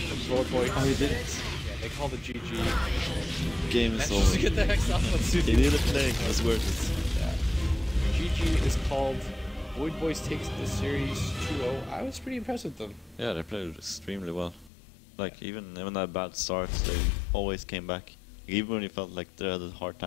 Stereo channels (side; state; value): right; drops out; at 14.7 s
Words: Road Boy. Oh, he did it. Yeah, they call the GG. Game is over. To get the hex off on Suzy. He did a play. It was worth it. Yeah. GG is called. Void Boys takes the series 2-0. I was pretty impressed with them. Yeah, they played extremely well. Like, even that bad starts, they always came back. Even when you felt like they had a hard